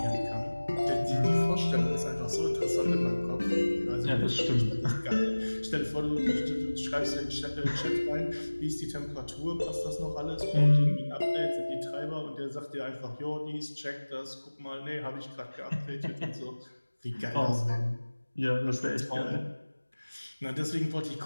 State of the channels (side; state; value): both; inverted; correlation -1.00